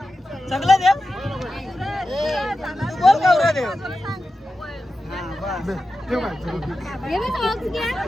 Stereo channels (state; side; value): normal; both; correlation 0.92